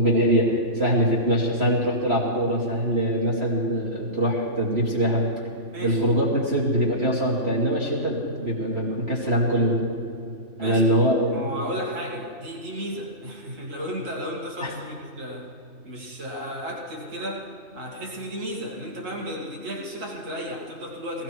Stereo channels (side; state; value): left; late; 3.0 ms